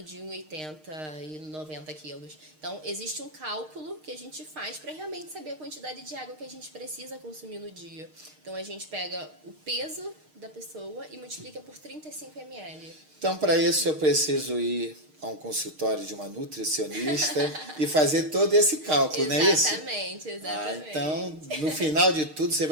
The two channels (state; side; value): late; left; 6.5 ms